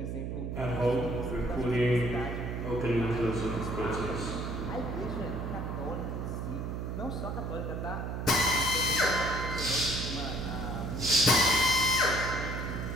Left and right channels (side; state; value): right; noise; hum, 4 dB below the sound